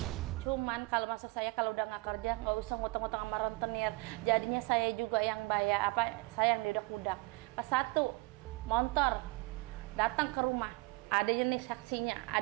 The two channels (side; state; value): left; quieter; 24.2 dB